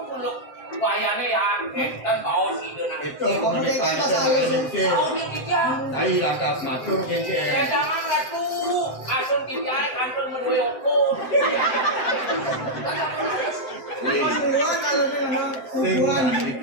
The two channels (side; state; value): right; late; 7.8 ms